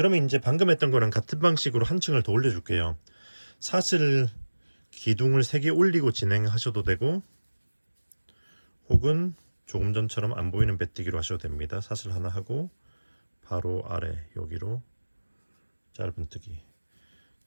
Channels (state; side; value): inverted; both; correlation -1.00